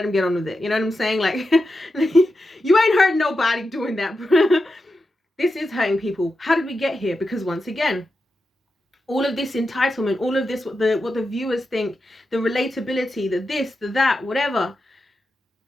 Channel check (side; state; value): both; normal; correlation 0.89